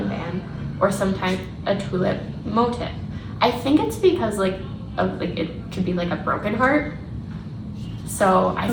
band, or sometimes a tulip motif. I think it's because it could be like a broken heart. So I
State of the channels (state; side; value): identical; both; correlation 1.00